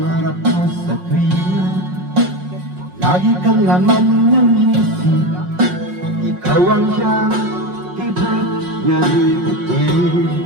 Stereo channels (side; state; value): left; late; 5.5 ms